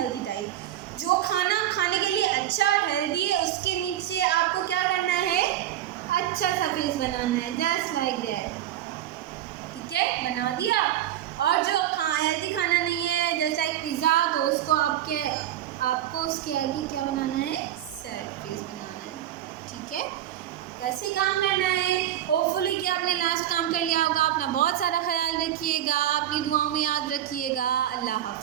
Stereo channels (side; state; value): left; quieter; 12.2 dB